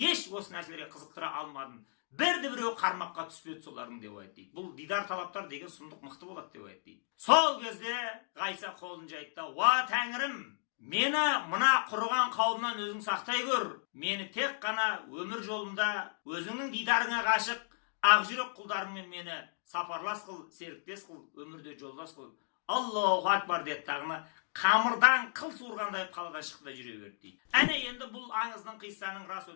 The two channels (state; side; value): silent; right; digital silence